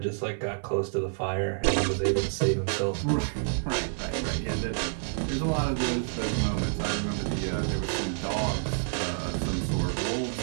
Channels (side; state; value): left; silent; 59 dB below the other